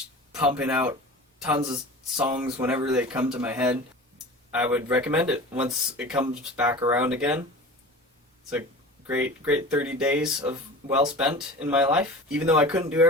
pumping out tons of songs whenever they come to my head. I would recommend it once it comes back around again. It's a great 30 days of well spent in my life. Even though I couldn't do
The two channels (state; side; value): normal; both; correlation 0.36